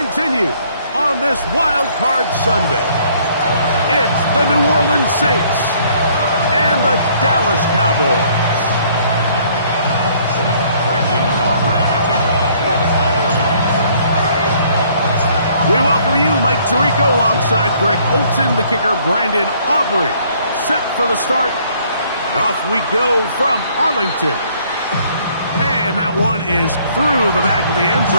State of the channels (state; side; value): inverted; both; correlation -0.62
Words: on this Wild Card Sunday. It's the New Orleans Saints and the Dallas Cowboys. We welcome you, Mike Tirico, alongside Greg Olson, the kicker, Brandon Aubrey. Set for the start, and off we go from Arlington. And that one is through the back of the end